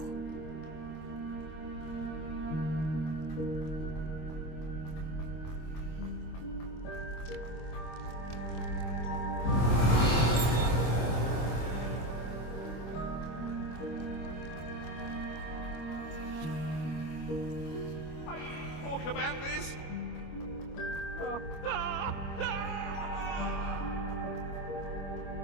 Talk about this?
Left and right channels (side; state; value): right; late; 25 ms